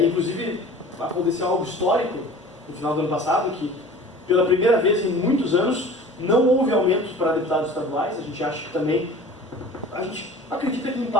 Inclusive, aconteceu algo histórico no final do ano passado, que pela primeira vez em muitos anos não houve aumento para deputados estaduais. A gente acha que também, a gente acredita que em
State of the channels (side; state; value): both; normal; correlation 0.42